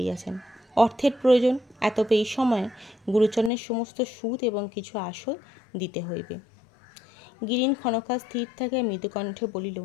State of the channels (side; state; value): right; drops out; at 3.5 s